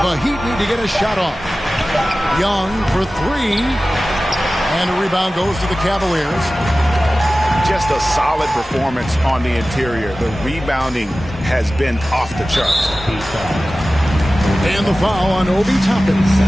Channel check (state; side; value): normal; both; correlation 0.96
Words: The Heat need to get a shot off. Young for 3. And a rebound goes to the Cavaliers. Just a solid performance on the interior. The rebounding has been off the charts. And the foul on Obi Toppin.